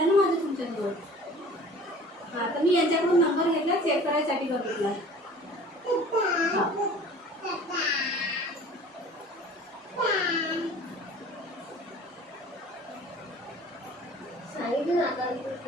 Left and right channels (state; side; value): normal; both; correlation 0.46